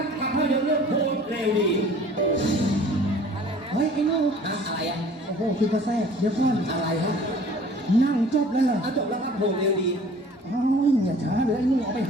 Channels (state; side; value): normal; both; correlation 0.49